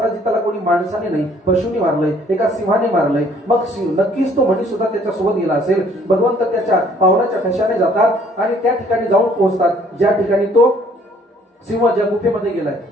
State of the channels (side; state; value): both; normal; correlation 0.60